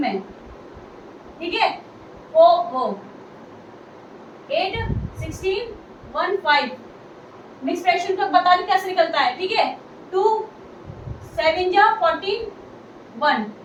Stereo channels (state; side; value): identical; both; correlation 1.00